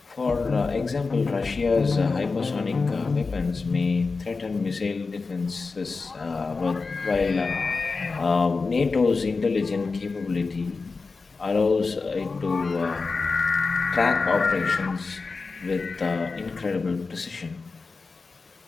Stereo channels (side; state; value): right; quieter; 4.2 dB